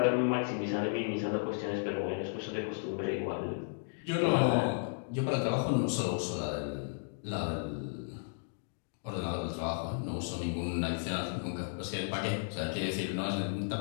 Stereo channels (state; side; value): silent; right; digital silence